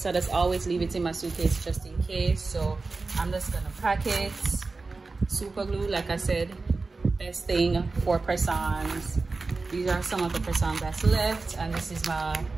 I just always leave it in my suitcase just in case. So I'm just gonna pack it. Super glue, like I said, best thing for press-ons. These are some of the press-ons that's left, and this is my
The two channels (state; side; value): quieter; left; 3.8 dB